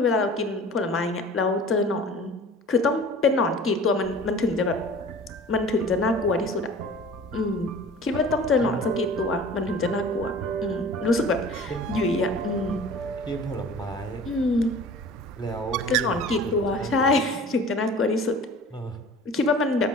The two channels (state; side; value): normal; both; correlation 0.43